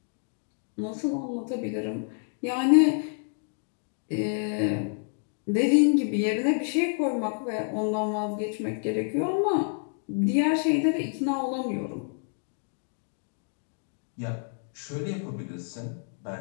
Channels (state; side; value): silent; right; 59 dB below the other